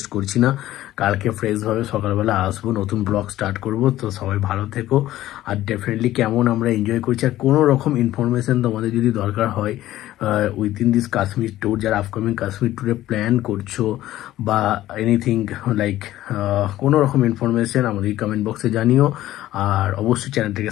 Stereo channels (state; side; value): quieter; right; 14.5 dB